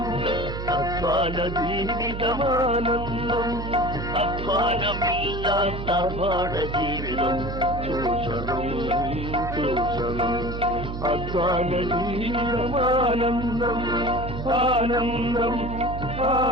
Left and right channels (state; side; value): noise; right; hum, 6 dB below the sound